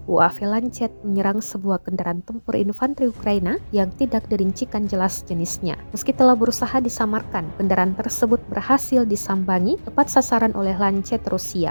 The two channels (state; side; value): inverted; both; correlation -1.00